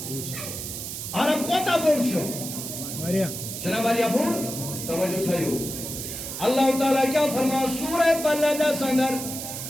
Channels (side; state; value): right; noise; hiss, 7 dB below the sound